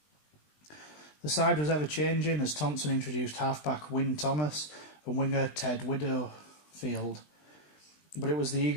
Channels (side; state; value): right; late; 20 ms